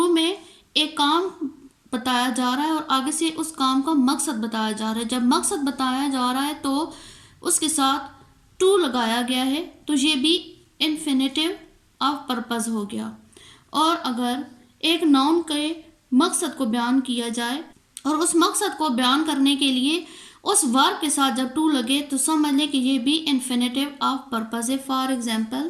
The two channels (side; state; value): both; identical; correlation 1.00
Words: में एक काम बताया जा रहा है और आगे से उस काम का मकसद बताया जा रहा है। जब मकसद बताया जा रहा है तो उसके साथ टू लगाया गया है, तो ये भी इन्फिनेटिव ऑफ पर्पस हो गया। और अगर एक नाउन के मकसद को बयान किया जाए और उस मकसद को बयान करने के लिए उस वर्ब के साथ जब टू लगे तो समझ लें कि ये भी इन्फिनेटिव ऑफ पर्पस है। For